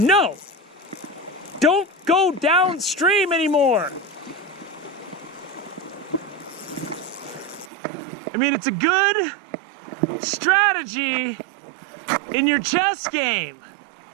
Don't go downstream anymore. I mean, it's a good strategy in your chess game.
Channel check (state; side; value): drops out; left; at 7.7 s